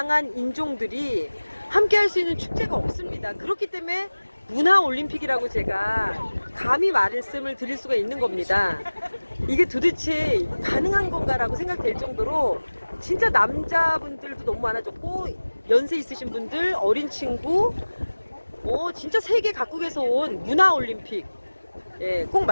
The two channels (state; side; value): inverted; both; correlation -1.00